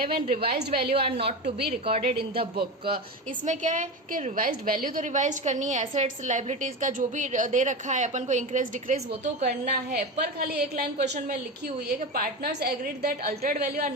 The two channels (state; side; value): normal; both; correlation 0.22